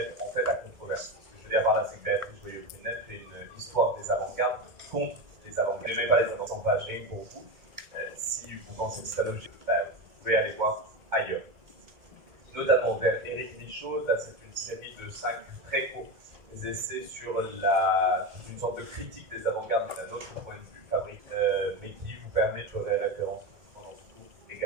en fait à controverse. Ce que je veux dire par là, c'est que Béatrice Joyeux-Prunel fait une histoire des avant-gardes contre les avant-gardes. Je n'aimais pas les avant-gardes, pas rien pour vous. Si vous pensez que c'est un objet, vous pouvez aller voir ailleurs. Notamment vers Éric Michaud, là c'est une série de 5 très courts essais sur une sorte de critique des avant-gardes d'un autre point de vue fabrique, mais qui vous permet de faire référence pendant ce cours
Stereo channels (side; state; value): left; late; 1.9 ms